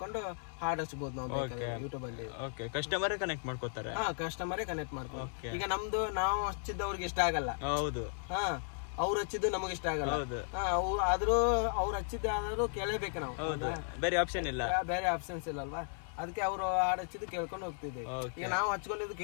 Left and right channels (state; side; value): silent; right; 54 dB below the other